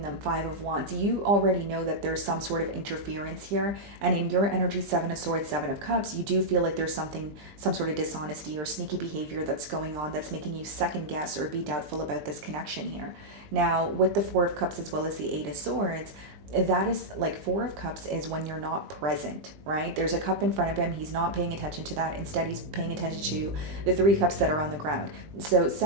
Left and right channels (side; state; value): left; late; 20 ms